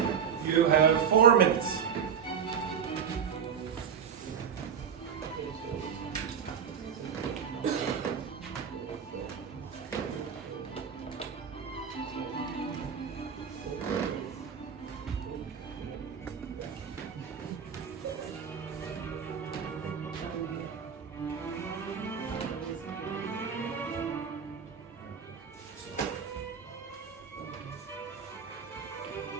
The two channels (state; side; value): quieter; left; 7.3 dB